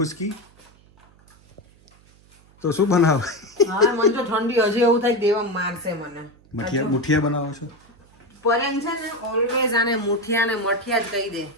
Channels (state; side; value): noise; right; hum, 29 dB below the sound